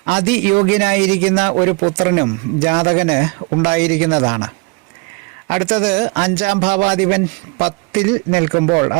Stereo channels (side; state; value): left; quieter; 27.1 dB